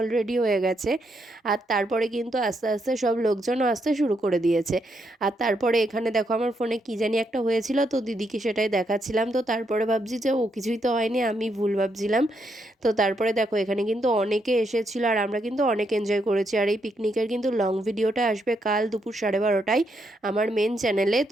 অলরেডি হয়ে গেছে। আর তারপরে কিন্তু আস্তে আস্তে সব লোকজনও আসতে শুরু করে দিয়েছে। আর তারপরে এখানে দেখো আমার ফোনে কী জানি একটা হয়েছিল, তো দিদিকে সেটাই দেখাচ্ছিলাম। তো তারপরে ভাবছি যে ও কিছুই তো হয়নি, আমি ভুল ভাবছিলাম। তো তারপরে দেখো এখানে কিন্তু অনেকে এসেছিলো, আর আমরা কিন্তু অনেক এনজয় করেছি। আর এই পিকনিকের কিন্তু লং ভিডিওটা আসবে কাল দুপুর 12:30টায় আমার মেন চ্যানেলে।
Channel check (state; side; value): normal; both; correlation 0.78